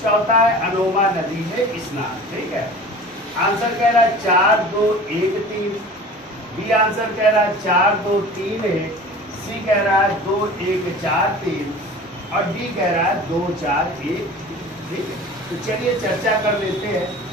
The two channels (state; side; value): normal; both; correlation 0.40